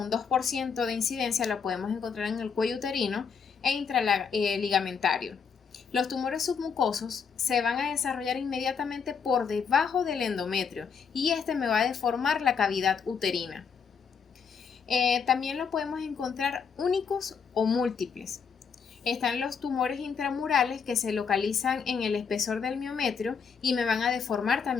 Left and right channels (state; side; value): quieter; right; 6.2 dB